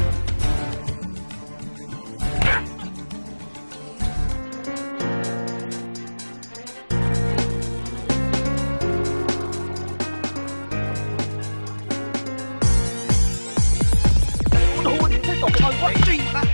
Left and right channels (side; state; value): both; inverted; correlation -1.00